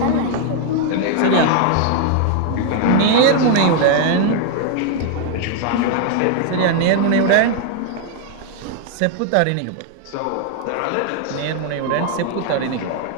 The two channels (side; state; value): both; different; correlation 0.00